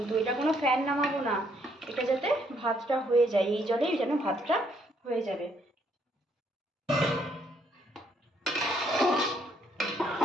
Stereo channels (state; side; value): normal; both; correlation 0.70